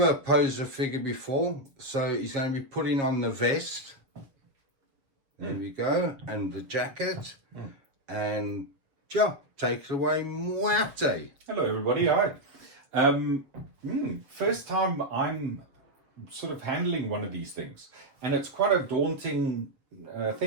posed a figure before, so he's going to be putting on the vest. There we go, and the jacket, and yeah, take it away, B.P.R.D. Hello everybody, hi. First time I'm sort of handling one of these things, and it's quite a daunting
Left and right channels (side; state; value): left; late; 7.2 ms